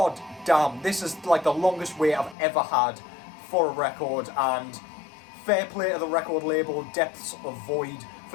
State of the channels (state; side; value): drops out; right; at 2.4 s